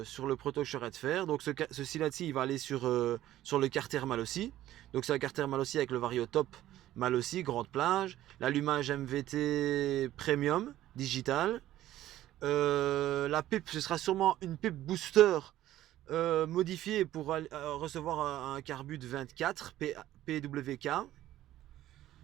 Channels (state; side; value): quieter; left; 13.9 dB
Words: proto que je serai de faire. Donc ceci là-ci, il va aller sur le Carter Malossi. Donc c'est un Carter Malossi avec le Variotop Malossi, grande plage. L'allumage MVT Premium, digital. La pipe, ce sera sûrement une pipe booster modifiée pour recevoir un carbut 24 PWK.